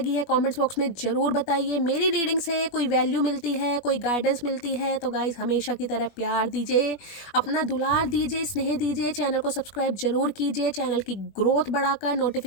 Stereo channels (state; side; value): late; right; 21 ms